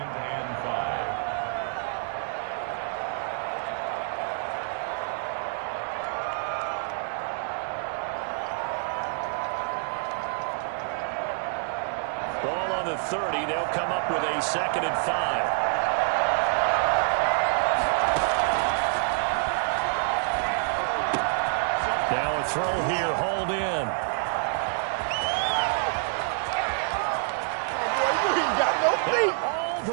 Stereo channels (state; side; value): silent; left; 60 dB below the other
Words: Ball on the 30. They'll come up with a 2nd and 5. Now a throw here, hauled in. Oh, boy, you ain't got no feet. All